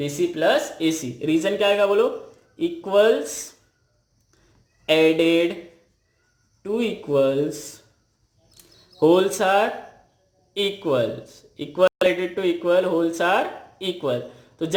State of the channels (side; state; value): both; identical; correlation 1.00